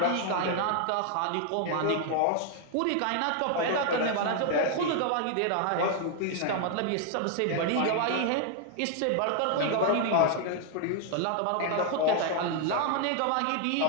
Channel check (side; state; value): both; different; correlation 0.00